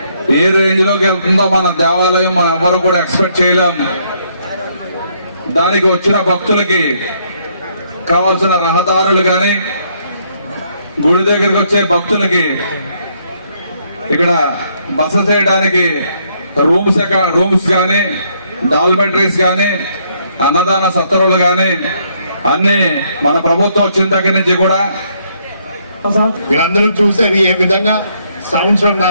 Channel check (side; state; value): both; inverted; correlation -0.70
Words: ఏ రేంజ్ లోకి వెళ్తుందో మన దేవాలయం మనం ఎవరు కూడా ఎక్స్పెక్ట్ చేయలేం. దానికి వచ్చిన భక్తులకి కావాల్సిన రహదారులు కానీ, గుడి దగ్గరికి వచ్చే భక్తులకి ఇక్కడ బస చేయడానికి రూమ్స్ కానీ, డాల్మెటరీస్ కానీ, అన్నదాన సత్రాలు కానీ అన్ని మన ప్రభుత్వం వచ్చిన దగ్గర నుంచి కూడా మీరందరూ చూసేది ఏ విధంగా